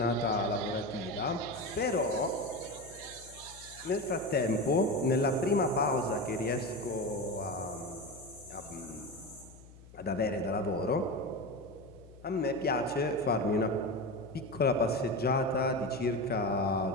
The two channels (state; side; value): noise; left; hum, 20 dB below the sound